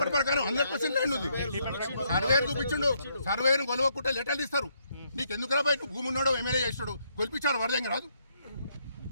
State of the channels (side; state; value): both; inverted; correlation -0.74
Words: ప్రకారం 100% ల్యాండ్ ఉంది. సర్వేరు చూపించిండు, సర్వేను కొలవకుంటే లెటర్లు ఇస్తారు. నీకు ఎందుకు రాబాయి? నువ్వు భూమి ఉన్నాడో ఎమ్మెల్యే చేస్తాడు, కొలిపించారు వరదంగా రాదు.